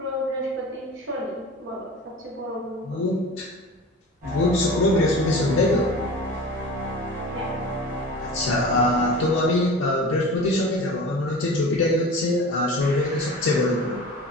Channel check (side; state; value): both; normal; correlation 0.36